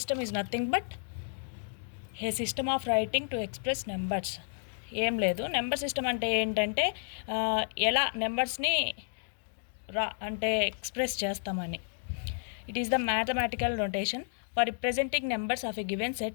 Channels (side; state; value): right; silent; digital silence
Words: is nothing but a system of writing to express numbers. ఏం లేదు, number system అంటే ఏంటంటే ఎలా నెంబర్స్ని అంటే express చేస్తామని. It is the mathematical notation for representing numbers of a given